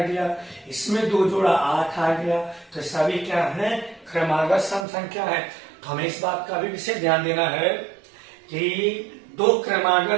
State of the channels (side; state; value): left; drops out; at 4.9 s